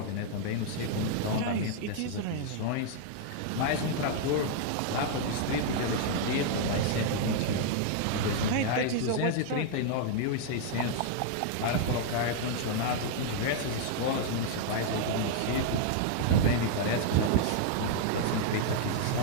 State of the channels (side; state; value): both; different; correlation -0.01